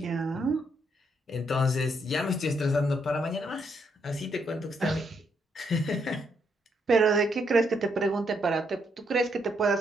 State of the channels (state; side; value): normal; both; correlation 0.75